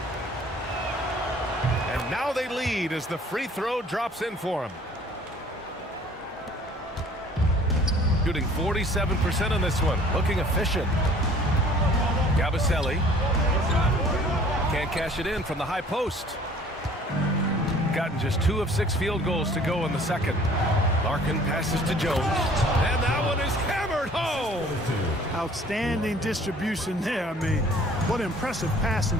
And now they lead as the free throw drops in for him. Shooting 47% on this one. Looking efficient. Yabusele can't cash it in from the high post. Gotten just 2 of 6 field goals to go in the second. Larkin passes to Jones. And that one is hammered home. Outstanding distribution there. I mean, what impressive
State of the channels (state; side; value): normal; both; correlation 0.53